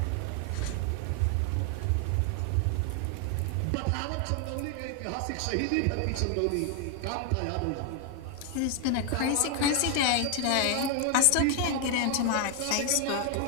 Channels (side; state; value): both; different; correlation 0.00